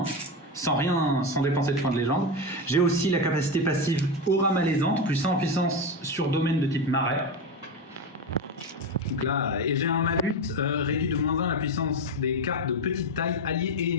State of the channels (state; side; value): normal; both; correlation 0.16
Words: sans dépenser de points de légende. J'ai aussi la capacité passive aura malaisante, +1 en puissance sur domaine de type marais. Donc là, et j'ai un malus réduit de -1 la puissance des cartes de petite taille, alliés et